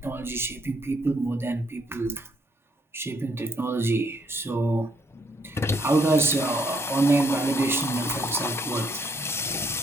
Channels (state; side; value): normal; both; correlation 0.70